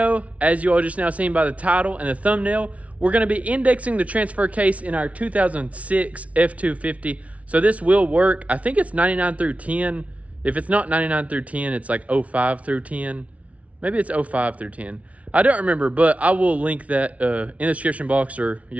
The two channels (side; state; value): left; late; 0.066 ms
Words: as you all just now seen by the title and the thumbnail, we're going to be indexing the transfer case in our 2006 F250. So this will work. I think it's 99 through 10. If it's not 99 through 10, it's like 05 through 10. Maybe it's 05 through 10. I don't remember, but I will link that in the description box, or